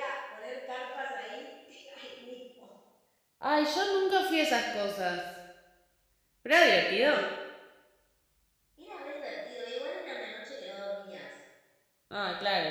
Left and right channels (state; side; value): identical; both; correlation 1.00